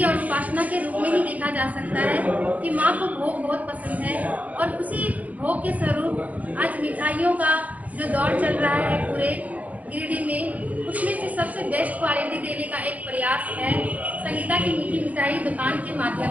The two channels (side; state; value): left; late; 0.074 ms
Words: और उपासना के रूप में ही देखा जा सकता है कि माँ को भोग बहुत पसंद है, और उसी भोग के स्वरूप आज मिठाइयों का जो दौर चल रहा है पूरे गिरिडीह में, उसमें से सबसे बेस्ट क्वालिटी देने का एक प्रयास है संगीता की मीठी मिठाई दुकान के